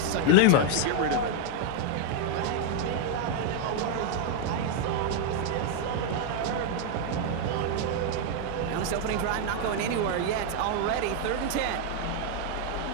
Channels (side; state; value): both; different; correlation 0.00